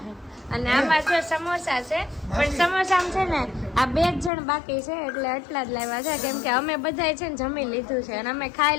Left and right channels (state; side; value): drops out; right; at 4.3 s